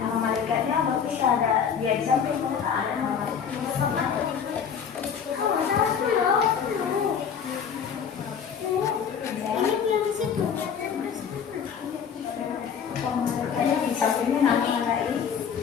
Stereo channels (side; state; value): right; quieter; 7.3 dB